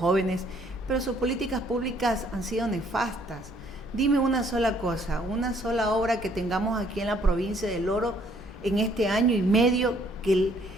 pero sus políticas públicas han sido nefastas. Dime una sola cosa, una sola obra que tengamos aquí en la provincia del Oro en este año y medio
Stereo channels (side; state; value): both; normal; correlation 0.64